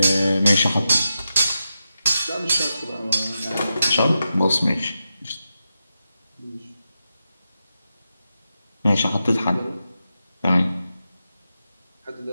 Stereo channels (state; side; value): inverted; both; correlation -0.89